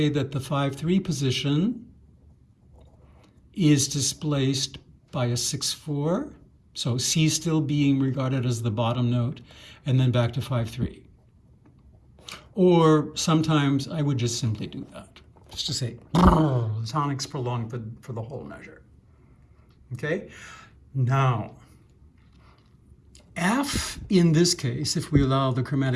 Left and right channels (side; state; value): both; identical; correlation 1.00